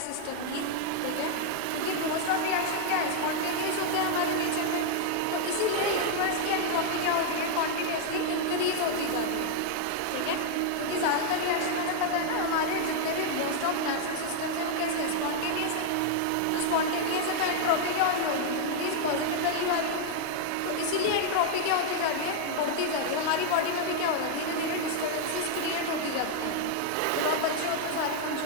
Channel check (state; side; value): different; both; correlation 0.00